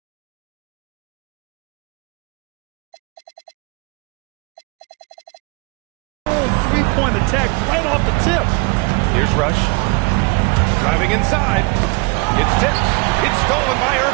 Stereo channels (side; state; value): left; quieter; 28.9 dB